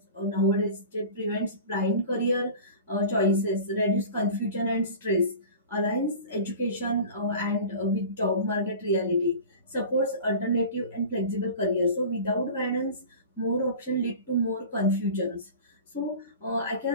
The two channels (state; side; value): inverted; both; correlation -0.37